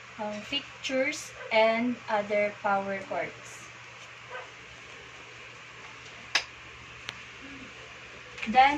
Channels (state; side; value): identical; both; correlation 1.00